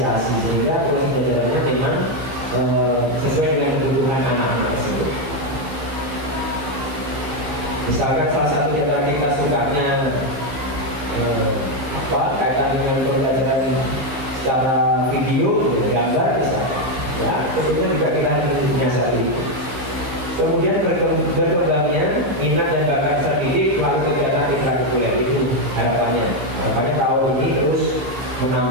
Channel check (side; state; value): left; late; 15 ms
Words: sehingga proses pembelajarannya memang sesuai dengan kebutuhan anak-anak tersebut. Misalkan salah satu di antara kita sukanya kaitan dengan pembelajaran secara video, gambar misalnya, ya tentunya juga kita harus menyiasati. Kemudian berkembangnya minat dan bakat terdidik melalui kegiatan ekstrakurikuler itu harapannya. Harapannya tahun ini terus